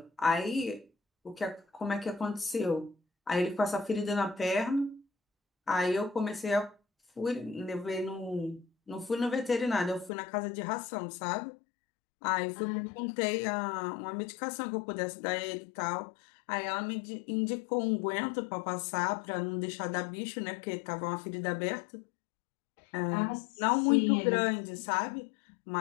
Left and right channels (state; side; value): drops out; right; at 10.1 s